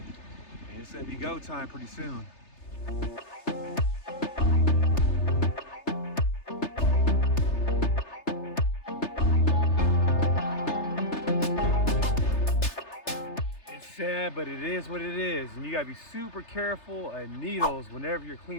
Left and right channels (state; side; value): late; right; 3.3 ms